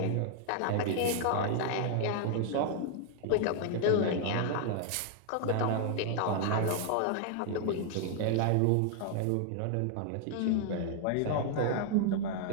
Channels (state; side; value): different; both; correlation 0.00